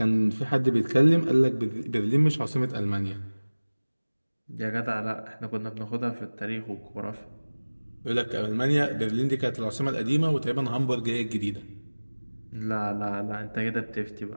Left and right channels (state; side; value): inverted; both; correlation -1.00